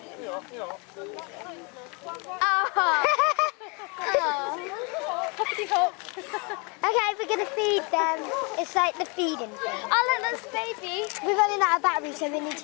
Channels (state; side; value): quieter; right; 31.9 dB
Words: Oh! Okay, we're going to feed them. It's like the feeding thing. Oh, look, that's baby. We're running out of battery, so we need